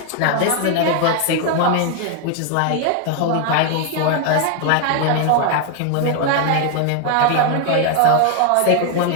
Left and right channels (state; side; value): different; both; correlation 0.00